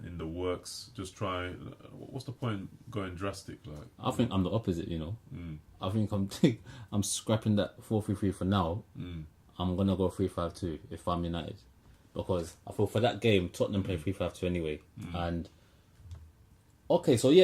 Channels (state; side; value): identical; both; correlation 1.00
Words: the works. Just try. What's the point going drastic? Like I think I'm the opposite. I think I'm scrapping that 4-3-3 for now. I'm gonna go 3-5-2 if I'm United, because I feel for that game Tottenham play 3-5-2 anyway. And okay, so